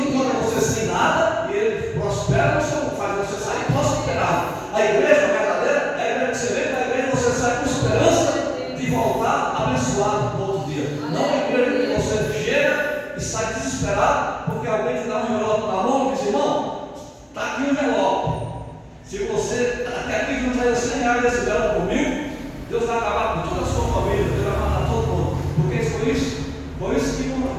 você sem nada e ele prospera, faz você sair prosperado. A igreja verdadeira é a igreja que você vem, a igreja que você sai com esperança de voltar abençoado no outro dia. Não é a igreja que você chega e sai desesperado porque alguém te dá um envelope na mão e diz: irmão, está aqui um envelope. Se você até aqui não traz 100 reais desse envelope por 1000, Deus vai acabar com toda a sua família, Deus vai matar todo mundo. Porque foi isso que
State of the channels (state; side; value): identical; both; correlation 1.00